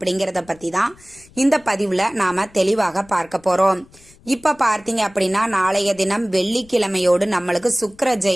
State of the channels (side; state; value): left; noise; rumble, 27 dB below the sound